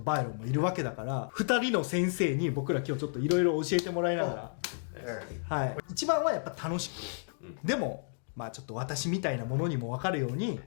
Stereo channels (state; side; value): silent; right; digital silence